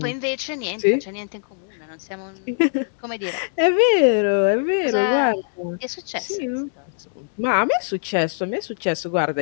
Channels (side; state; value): right; silent; digital silence